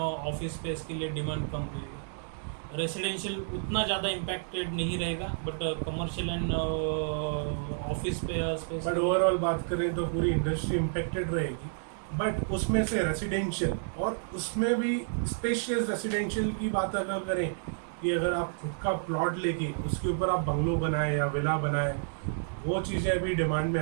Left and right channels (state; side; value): silent; left; 58 dB below the other